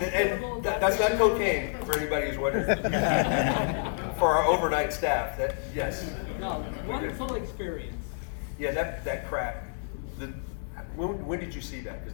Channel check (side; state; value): right; silent; digital silence